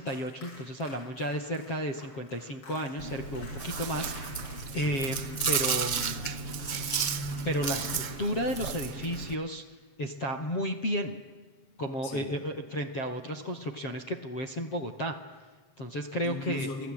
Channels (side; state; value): right; late; 7.6 ms